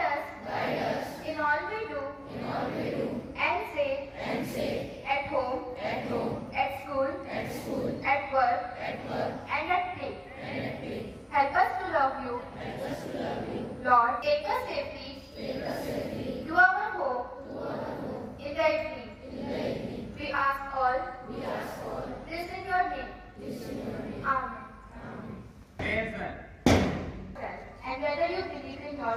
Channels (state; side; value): identical; both; correlation 1.00